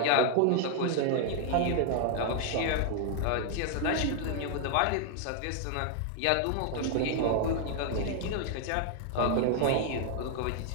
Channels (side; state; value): both; different; correlation 0.00